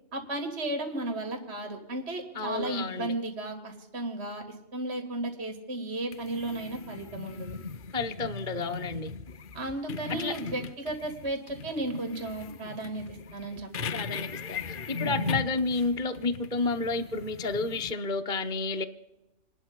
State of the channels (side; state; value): left; late; 2.5 ms